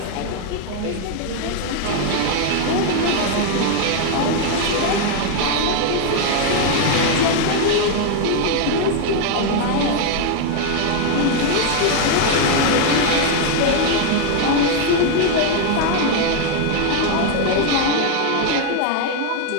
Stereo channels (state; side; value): different; both; correlation 0.01